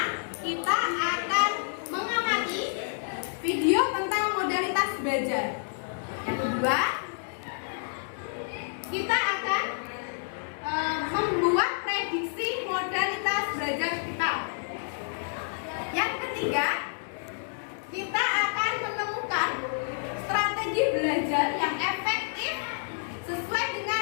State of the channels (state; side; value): silent; right; digital silence